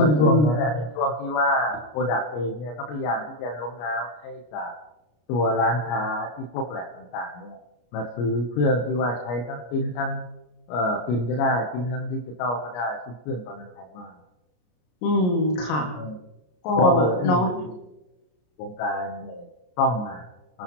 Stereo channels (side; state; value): right; late; 33 ms